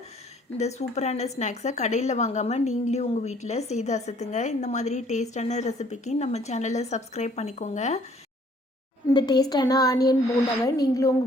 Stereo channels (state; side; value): normal; both; correlation 0.60